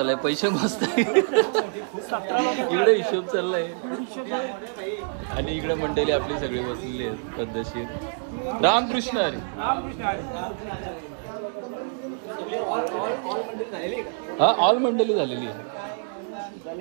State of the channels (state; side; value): silent; left; digital silence